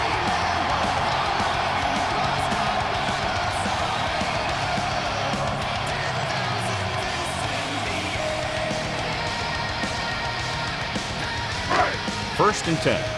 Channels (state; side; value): identical; both; correlation 1.00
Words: First and 10.